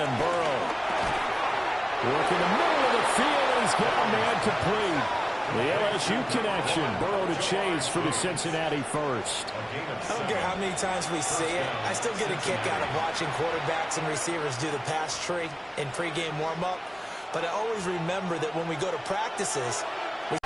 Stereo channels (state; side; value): identical; both; correlation 1.00